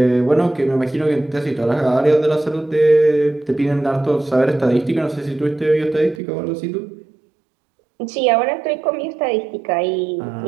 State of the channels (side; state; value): left; drops out; at 6.2 s